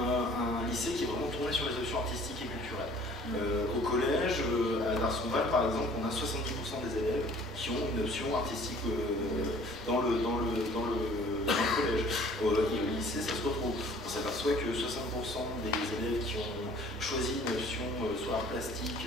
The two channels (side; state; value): both; normal; correlation 0.53